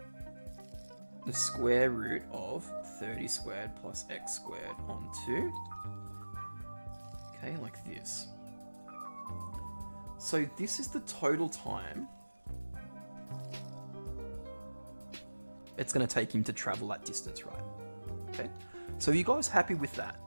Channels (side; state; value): both; inverted; correlation -1.00